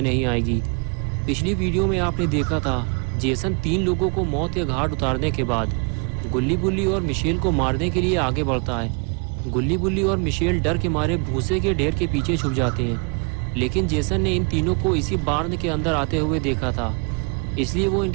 नहीं आएगी। पिछली वीडियो में आपने देखा था जेसन 3 लोगों को मौत के घाट उतारने के बाद गुल्ली बुल्ली और मिशेल को मारने के लिए आगे बढ़ता है। गुल्ली बुल्ली और मिशेल डर के मारे भूसे के ढेर के पीछे छुप जाते हैं, लेकिन जेसन ने इन तीनों को इसी बार्न के अंदर आते हुए देखा था, इसलिए वो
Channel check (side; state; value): left; quieter; 34.9 dB